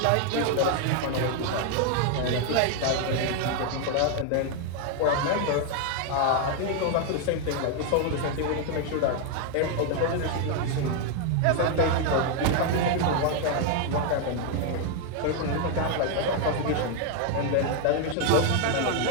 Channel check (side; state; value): both; different; correlation 0.00